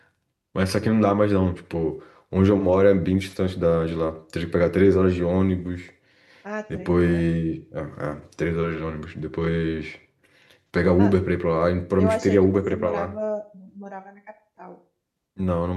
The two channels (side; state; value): both; identical; correlation 1.00